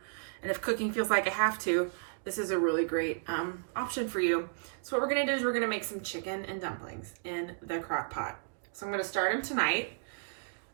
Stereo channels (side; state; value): left; silent; digital silence